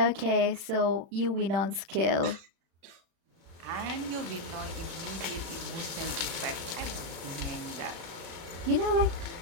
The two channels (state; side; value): late; left; 36 ms